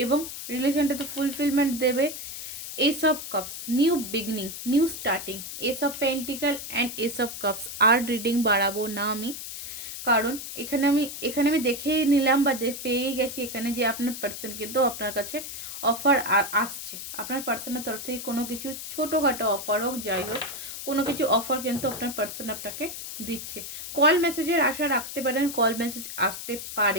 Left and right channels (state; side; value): noise; left; hiss, 8 dB below the sound